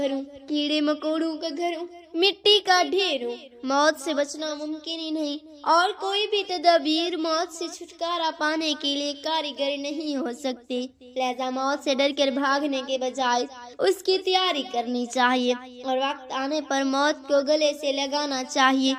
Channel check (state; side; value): identical; both; correlation 1.00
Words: ہوں، کیڑے مکوڑوں کا گھر ہوں، مٹی کا ڈھیر ہوں۔ موت سے بچنا ممکن ہی نہیں، اور کوئی بھی تدابیر موت سے چھٹکارا پانے کے لیے کارگر نہیں ہو سکتی۔ لہذا موت سے ڈر کر بھاگنے کے بجائے اس کی تیاری کرنی چاہیے، اور وقت آنے پر موت کو گلے سے لگانا چاہیے۔